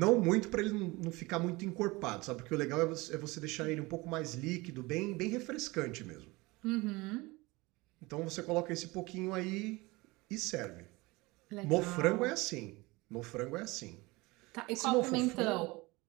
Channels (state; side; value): quieter; left; 22.9 dB